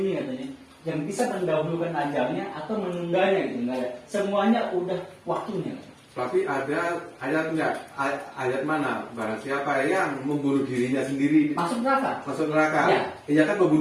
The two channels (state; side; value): identical; both; correlation 1.00